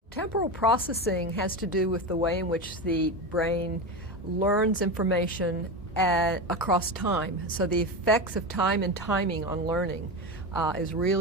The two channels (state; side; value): normal; both; correlation 0.20